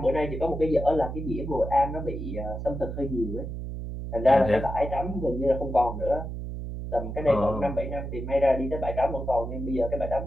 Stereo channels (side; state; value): right; noise; hum, 6 dB below the sound